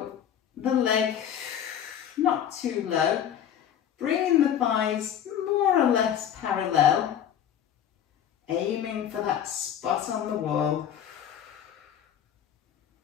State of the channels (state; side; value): quieter; right; 9.6 dB